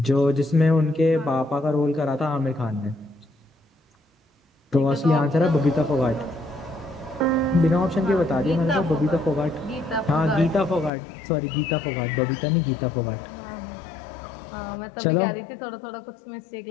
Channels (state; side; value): drops out; right; at 10.9 s